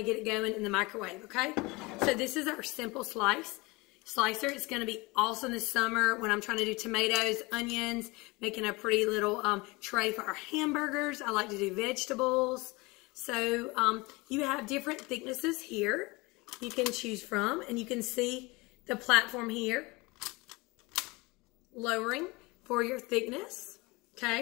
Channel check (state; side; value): quieter; right; 24.3 dB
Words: get it going in the microwave, okay? So this is our simple slicer. It's going to be awesome this summer when I'm trying to do tomatoes, onions, making a pretty little tray for our hamburgers. I like to do vegetables. So you have different thicknesses here you can choose from, and you can see the platform here lowering for your thickness,